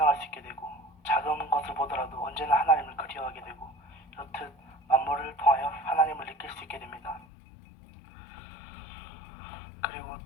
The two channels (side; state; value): right; drops out; at 7.2 s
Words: 수 있게 되고 작은 것을 보더라도 언제나 하나님을 그리워하게 되고 이렇듯 만물을 통하여 하나님을 느낄 수 있게 됩니다. 그리고